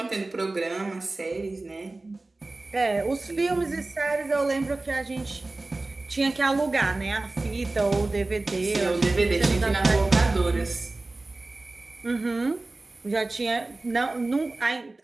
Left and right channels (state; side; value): quieter; left; 3.1 dB